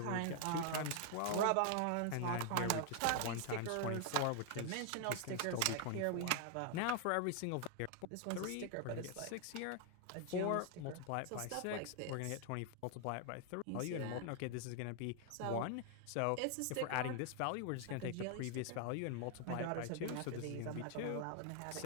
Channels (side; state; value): both; different; correlation 0.00